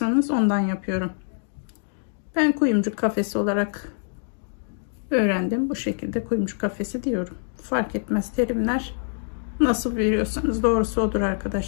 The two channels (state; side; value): silent; right; digital silence